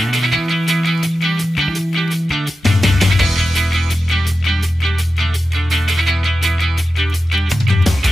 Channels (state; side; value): normal; both; correlation 0.93